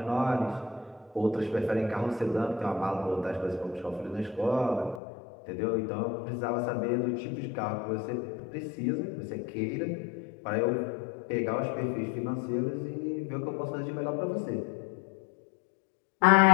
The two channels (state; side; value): drops out; right; at 5.0 s